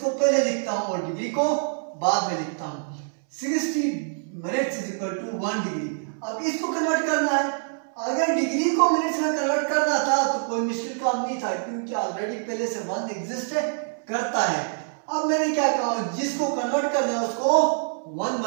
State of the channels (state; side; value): silent; left; 61 dB below the other